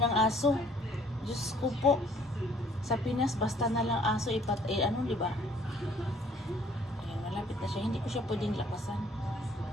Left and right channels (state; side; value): normal; both; correlation 0.59